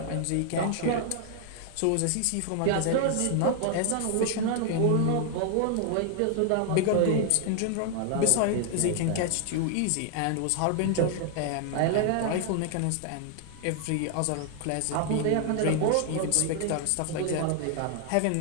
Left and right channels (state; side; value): different; both; correlation 0.00